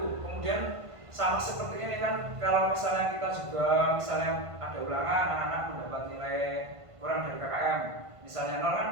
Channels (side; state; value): left; late; 1.5 ms